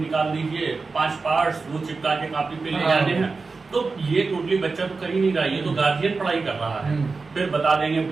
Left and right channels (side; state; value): left; quieter; 4.2 dB